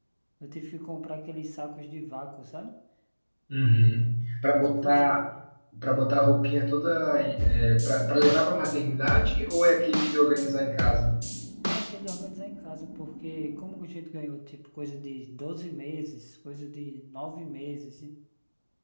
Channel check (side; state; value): both; inverted; correlation -1.00